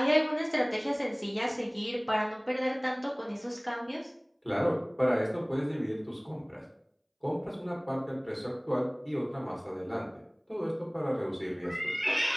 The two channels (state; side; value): identical; both; correlation 1.00